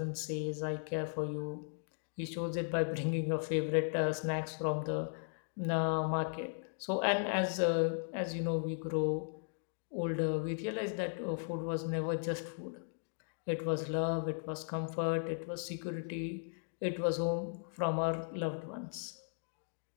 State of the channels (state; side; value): silent; right; digital silence